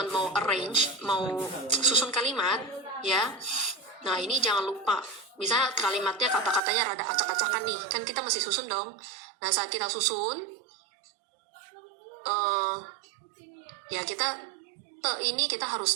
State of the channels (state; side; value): drops out; left; at 6.6 s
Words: mau arrange, mau susun kalimat, ya. Nah, ini jangan lupa. Misalnya kalimatnya kata-katanya rada acak-acakan nih, kan kita masih susun dong. Nah, saat kita susun, ya kita te ini kita